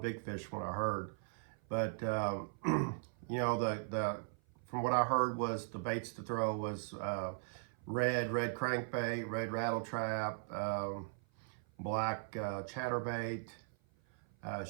big fish from what I heard. But you know, the from what I heard was the baits to throw was red crankbait, red rattle trap, black chatterbait,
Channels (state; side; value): silent; left; 52 dB below the other